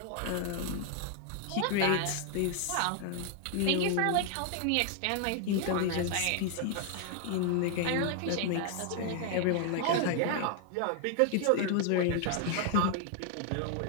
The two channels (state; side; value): different; both; correlation 0.00